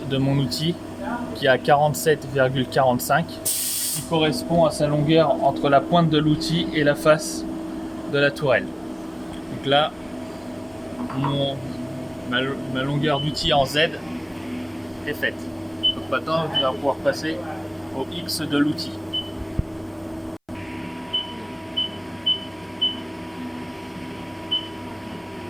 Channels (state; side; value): identical; both; correlation 1.00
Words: de mon outil qui est à 47,45 qui correspond à sa longueur entre la pointe de l'outil et la face de la tourelle. Donc là, ma longueur d'outil en Z est faite. Donc maintenant, je vais pouvoir passer au X de l'outil.